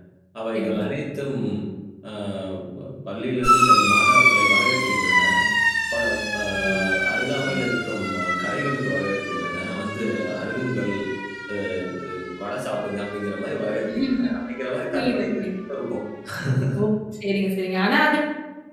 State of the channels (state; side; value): identical; both; correlation 1.00